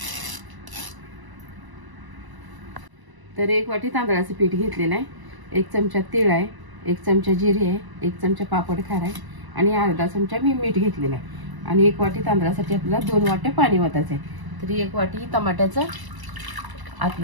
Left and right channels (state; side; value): late; left; 1.0 ms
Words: तर 1 वाटी तांदळाचं पीठ घेतलेलं आहे, 1 चमचा तीळ आहे, 1 चमचा जिरे आहे, 1 चमचा पापड खार आहे आणि अर्धा चमचा मी मीठ घेतलेलं आहे। आणि 1 वाटी तांदळासाठी आपल्याला 2 वाट्या पाणी ओतायचं आहे। तर 1 वाटी टमाट्याचं